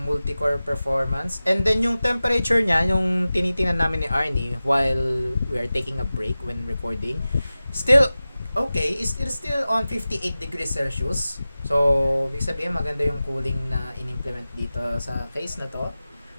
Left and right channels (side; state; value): both; inverted; correlation -0.96